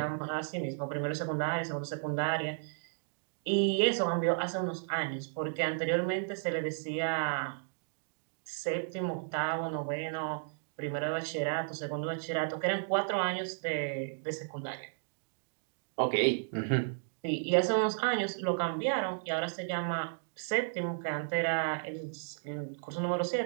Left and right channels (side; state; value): left; silent; digital silence